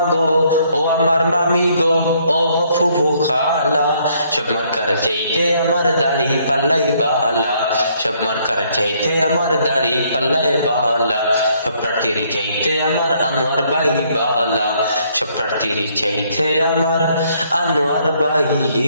গো, ও আমার মামি গো, ও ফুফু খালা, সব মার্কার চাইতে আমার দাড়ি পাল্লাই বালা, সব মার্কার চাইতে আমার দাড়ি পাল্লাই বালা। সব প্রার্থীর চাইতে আমার আনোয়ার ভাই বালা, সব প্রার্থীর চাইতে আমার আনোয়ার ভাই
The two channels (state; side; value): inverted; both; correlation -0.67